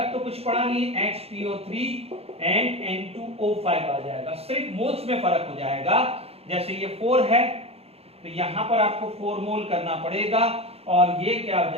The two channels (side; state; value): left; late; 0.29 ms